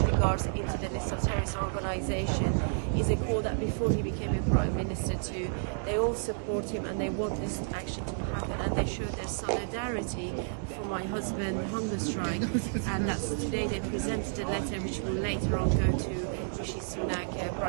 Guards, into the list of terrorist organisation is a call that before he became a Prime Minister they all support him and they want this action to happen, and they show their solidarity for my husband hunger strike, and that's today they presented a letter which will later on go to Rishi Sunak,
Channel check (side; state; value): left; silent; digital silence